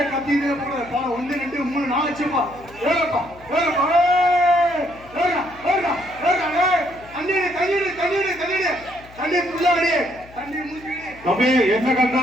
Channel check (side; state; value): left; noise; hum, 22 dB below the sound